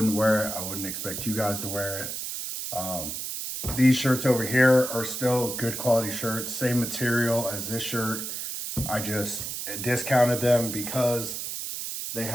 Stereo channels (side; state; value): right; noise; hiss, 5 dB below the sound